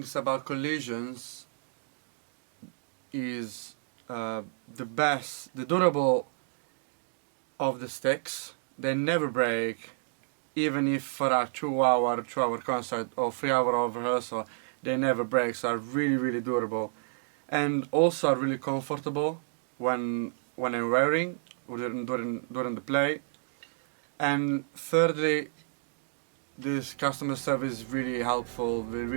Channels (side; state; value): left; silent; digital silence